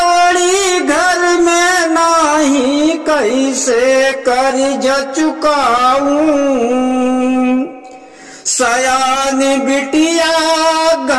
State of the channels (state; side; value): identical; both; correlation 1.00